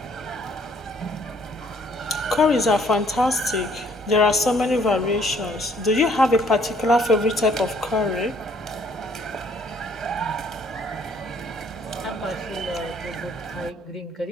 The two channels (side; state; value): both; normal; correlation 0.62